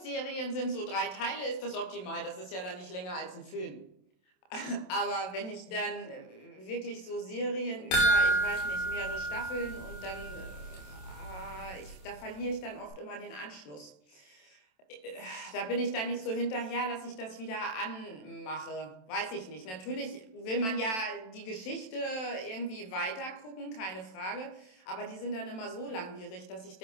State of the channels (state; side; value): late; right; 27 ms